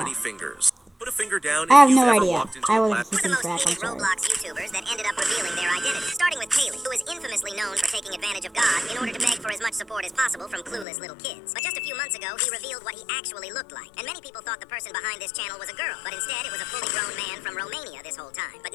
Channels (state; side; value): drops out; right; at 10.9 s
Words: fingers. Put a finger down I have if you've no ever idea. walked into I a wasn't class. One of the keeping most track. I'm hated sorry. Roblox YouTubers that ended up revealing their identity, starting with Kaylee, who is infamously known for taking advantage of God in order to beg for as much support as possible from clueless little kids. But just a few months ago, he revealed what he actually looked like, and many people thought the person behind this channel was a girl, but instead it was a fully grown man from Romania this whole time. But